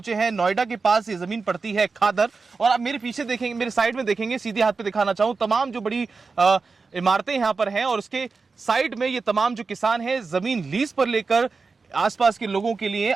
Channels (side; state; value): left; quieter; 4.5 dB